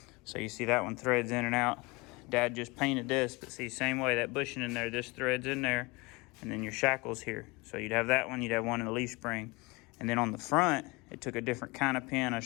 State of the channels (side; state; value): right; quieter; 25.3 dB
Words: So you see that one threads in and out. Dad just painted this, but see, same way, that bushing in there, this threads in there, and then your shackle's here. So you'd have that one, you'd have one in the leaf spring. And then on the front, it took a different kind of pin. I